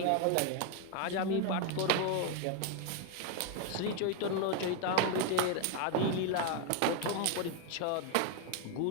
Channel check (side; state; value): both; different; correlation 0.01